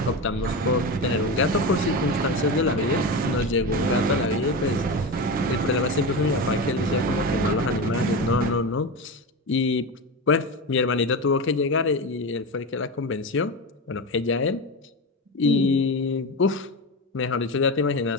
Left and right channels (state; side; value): normal; both; correlation 0.21